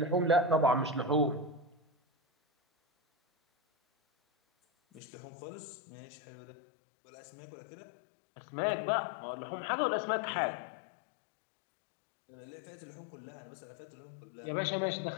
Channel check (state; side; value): drops out; right; at 5.0 s